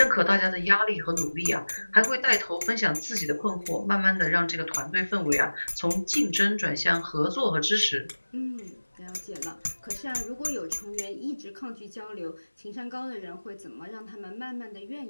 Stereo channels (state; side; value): inverted; both; correlation -1.00